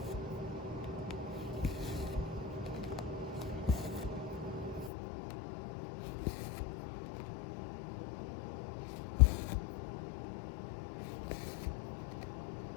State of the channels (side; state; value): right; drops out; at 4.9 s